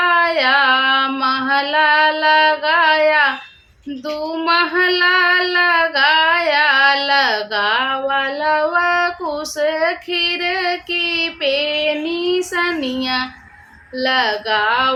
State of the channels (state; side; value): identical; both; correlation 1.00